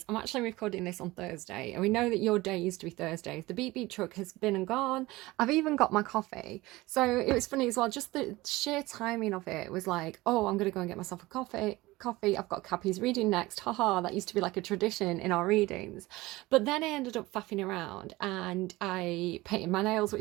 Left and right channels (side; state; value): left; quieter; 19.8 dB